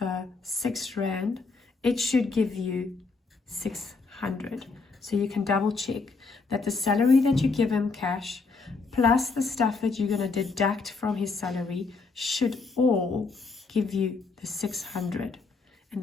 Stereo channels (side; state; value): right; quieter; 4.2 dB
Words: 6 Rand, it should give you 600. So you can double check that the salary that you give him cash plus the stuff that you're going to deduct from his salary should all give you the 600, and